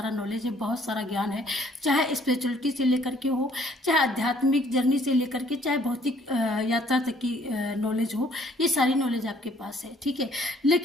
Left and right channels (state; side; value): normal; both; correlation 0.61